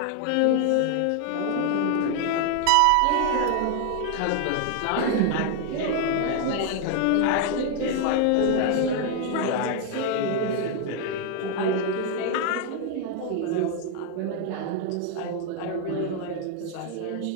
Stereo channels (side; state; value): both; different; correlation 0.00